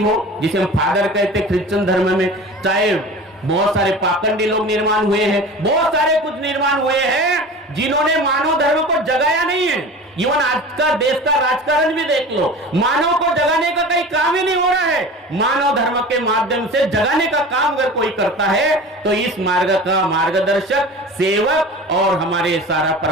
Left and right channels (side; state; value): both; normal; correlation 0.36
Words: जिसे हम फादर कहते क्रिश्चियन धर्म में, चाहे बहुत सारे पाखंडी लोग निर्माण हुए हैं, बहुत सारे कुछ निर्माण हुए हैं जिन्होंने मानव धर्म को जगाया नहीं है. इवन आज का देश का राजकारण भी देख लो, मानव को जगाने का कहीं काम ही नहीं हो रहा है. मानव धर्म के माध्यम से जगाने का काम अगर कोई करता है तो इस मार्ग का मार्गदर्शक सेवक और हमारे सारा